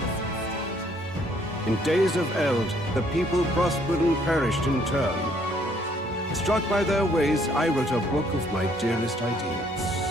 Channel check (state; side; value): normal; both; correlation 0.65